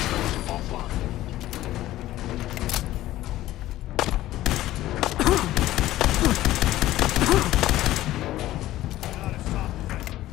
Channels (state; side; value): quieter; right; 15.0 dB